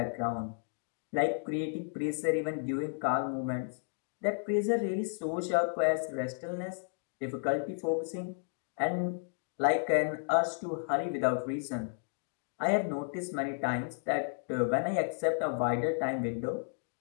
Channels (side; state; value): right; silent; digital silence